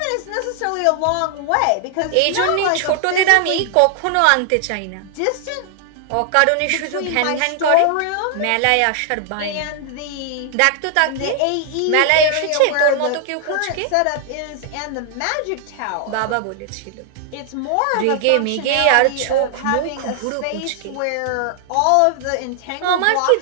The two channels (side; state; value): both; different; correlation 0.00